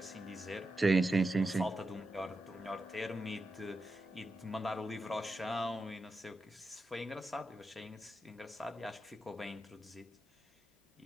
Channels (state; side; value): normal; both; correlation 0.89